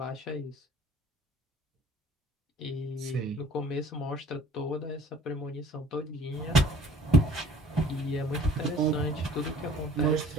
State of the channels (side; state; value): both; normal; correlation 0.52